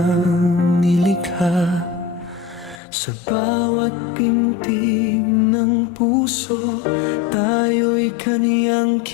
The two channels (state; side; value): drops out; right; at 2.8 s